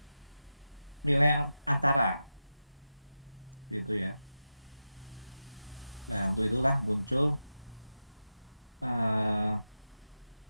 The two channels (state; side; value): inverted; both; correlation -0.91